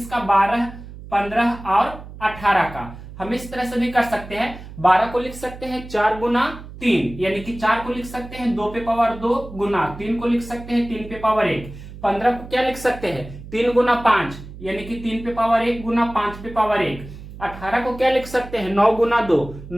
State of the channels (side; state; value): right; noise; hum, 14 dB below the sound